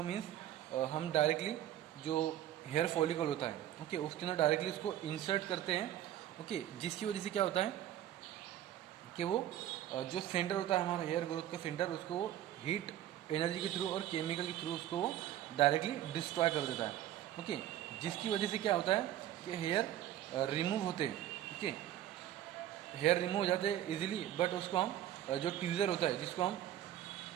मीन्स हम डायरेक्टली जो हेयर फॉलिकल होता है, ओके, उसके अंदर डायरेक्टली उसको इंसर्ट करते हैं. ओके. जिसकी वजह से क्या होता है कि वो जो सेंटर होता है हमारा हेयर ग्रोथ का सेंटर, उसको वो हीट एनर्जी के थ्रू और केमिकल के थ्रू उसको वो डायरेक्टली डिस्ट्रॉय कर देता है. ओके. जिसकी वजह से क्या होता है कि हेयर रिमूव होते हैं. ओके. हेयर रिमूव हो जाते हैं इजीली, बट उसको हम जो ट्यूजर होता है जिसको हम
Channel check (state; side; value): quieter; left; 12.3 dB